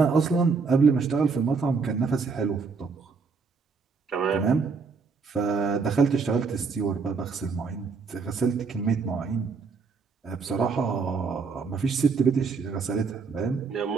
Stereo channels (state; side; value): quieter; left; 4.9 dB